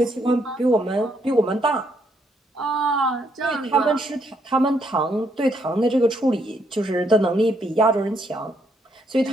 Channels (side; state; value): both; normal; correlation 0.73